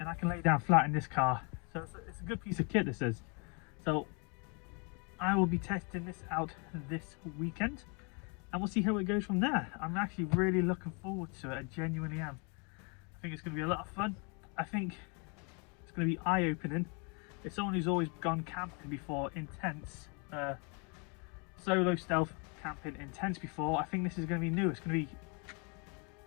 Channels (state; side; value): quieter; right; 34.6 dB